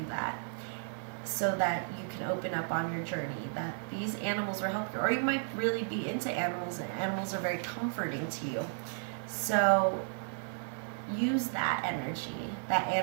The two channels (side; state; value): left; silent; 55 dB below the other